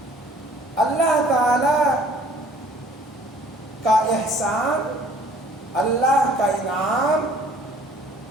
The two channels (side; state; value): both; normal; correlation 0.55